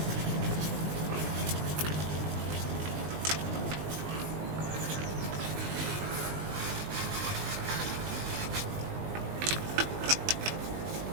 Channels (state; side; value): late; left; 20 ms